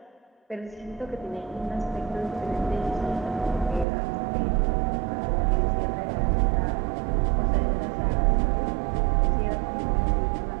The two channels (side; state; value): left; drops out; at 3.9 s